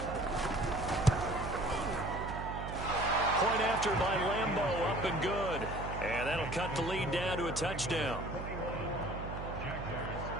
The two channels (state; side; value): noise; right; hum, 7 dB below the sound